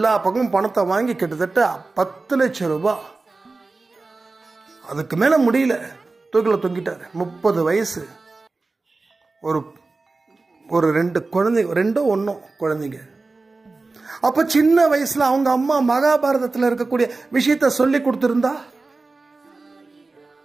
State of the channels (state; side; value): quieter; left; 3.6 dB